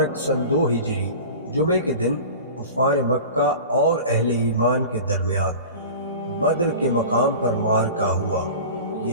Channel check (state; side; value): inverted; both; correlation -0.37